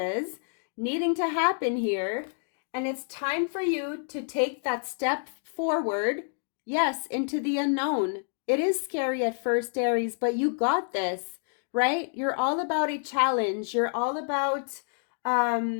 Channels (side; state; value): right; silent; digital silence